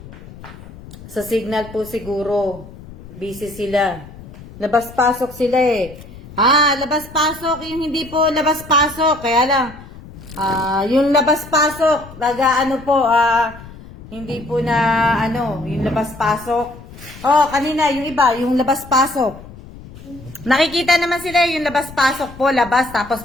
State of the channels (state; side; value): noise; left; rumble, 17 dB below the sound